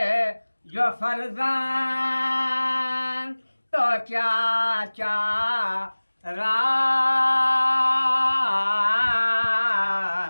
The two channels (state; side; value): inverted; both; correlation -1.00